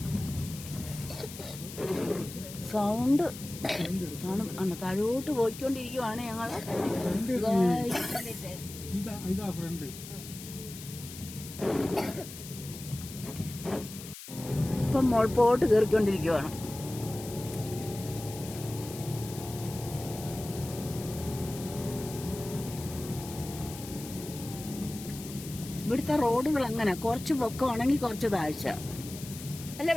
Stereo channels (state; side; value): noise; left; hiss, 13 dB below the sound